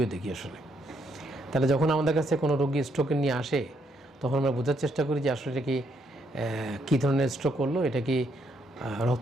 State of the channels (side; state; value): both; normal; correlation 0.74